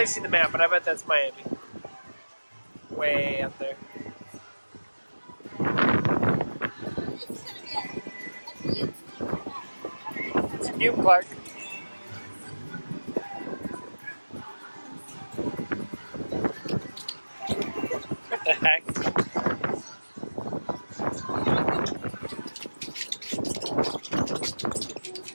to see the map, but I bet that's Miami. Way up there. It's a new Clark. What the heck?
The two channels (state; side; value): inverted; both; correlation -1.00